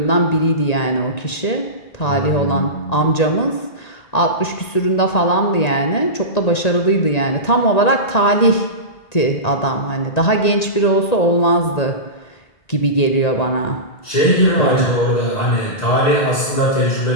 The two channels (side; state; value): right; late; 1.9 ms